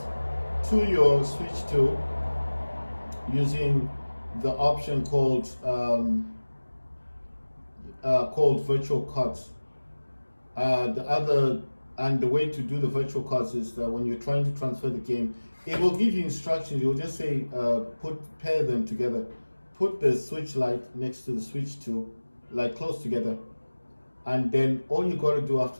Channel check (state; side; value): inverted; both; correlation -1.00